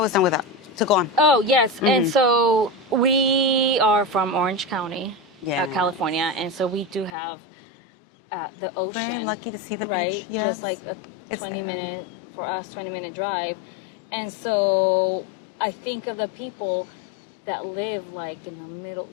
was done with that. So go on. Oh, yes. And so we are from Orange County, Yeah. California. And so we do have the ocean. lucky to see the right? beach, Just yes. like a 20-minute drive. And so I think of the people that live like in the middle,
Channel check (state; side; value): drops out; right; at 7.2 s